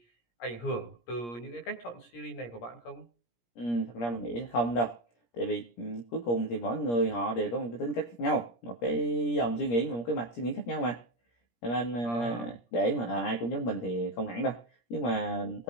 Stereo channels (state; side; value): late; right; 17 ms